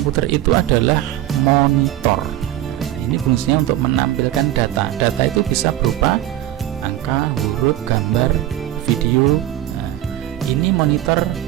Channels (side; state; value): left; quieter; 13.7 dB